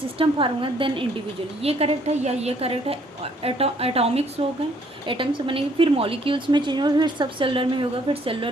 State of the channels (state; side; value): normal; both; correlation 0.64